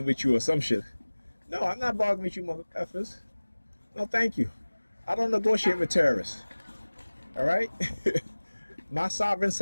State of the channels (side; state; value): both; inverted; correlation -1.00